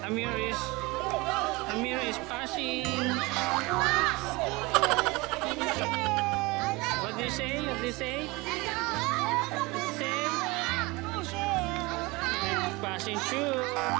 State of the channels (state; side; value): quieter; left; 23.7 dB